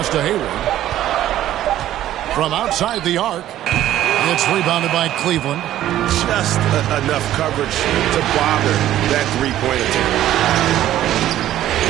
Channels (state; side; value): quieter; left; 12.9 dB